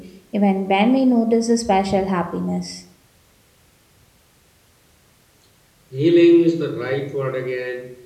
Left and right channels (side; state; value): both; identical; correlation 1.00